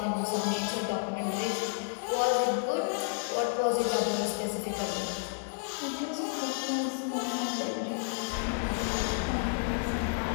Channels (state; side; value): silent; right; digital silence